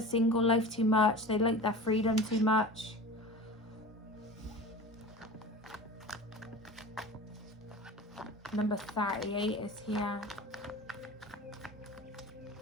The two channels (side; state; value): both; normal; correlation 0.35